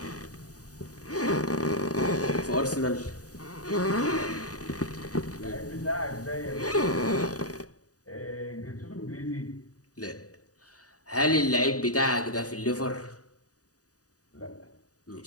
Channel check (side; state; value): right; late; 0.67 ms